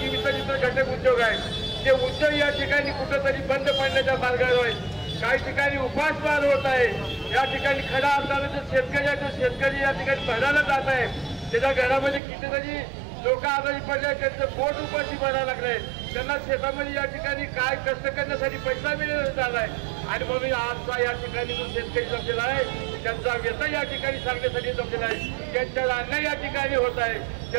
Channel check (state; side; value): drops out; left; at 12.2 s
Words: घटक उद्योग आहेत ते उद्योग या ठिकाणी कुठेतरी बंद पडण्याच्या मार्गावर आहेत। काही ठिकाणी उपासमार होत आहे। या ठिकाणी खऱ्या अर्थाने जो शेतकरी आहे तो शेतकरी या ठिकाणी भरायला जात आहे, त्याच्या घरामध्ये कितीतरी लोक आजारी पडले, त्यांचं पोट उपाशी भरायला लागलंय, त्यांना शेतामध्ये या ठिकाणी काय कष्ट करण्यासाठी पैसा मिळाला झालाय आणि म्हणून आजचा या ठिकाणी जो शेतकरी जमलेला आहे त्यांचा व्यथा या ठिकाणी सांगण्यासाठी जमलेला आहे, त्यांच्या अन्याय या ठिकाणी होत आहे,